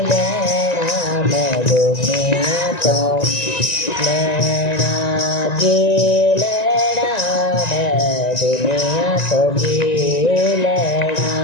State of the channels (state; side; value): late; right; 1.9 ms